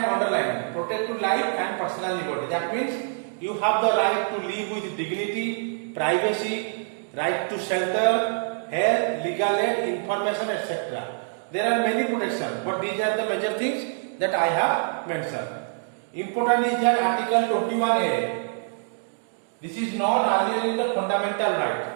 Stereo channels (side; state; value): left; silent; digital silence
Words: underlining, protect to life and personal liberty. That means you have the right to live with dignity, privacy, right to shelter, health, legal aid, information, etc. There are many protections, but these are the major things that I have mentioned. Important is that Article 21A. This is not earlier in the fundamental